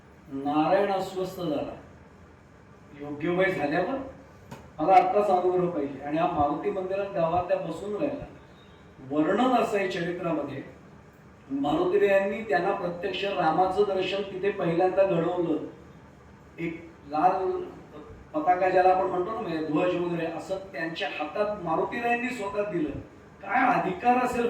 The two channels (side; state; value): both; identical; correlation 1.00